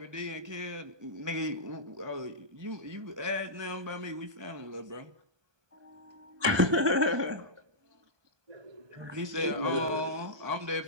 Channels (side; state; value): left; late; 1.2 ms